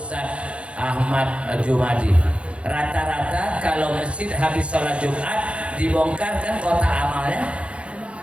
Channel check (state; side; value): late; left; 0.060 ms